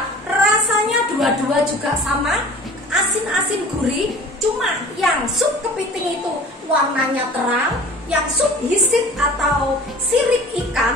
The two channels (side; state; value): both; normal; correlation 0.44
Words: Rasanya dua-dua juga sama, asin-asin gurih. Cuma yang sup kepiting itu warnanya terang, yang sup bisit atau sirip